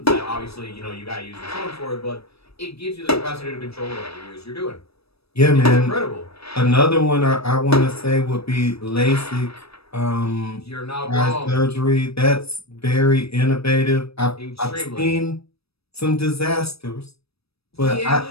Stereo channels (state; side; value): late; right; 0.78 ms